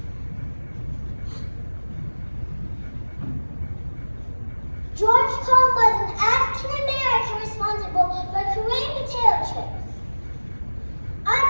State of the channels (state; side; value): inverted; both; correlation -1.00